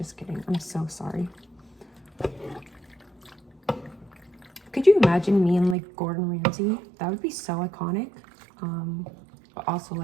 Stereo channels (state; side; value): drops out; left; at 5.8 s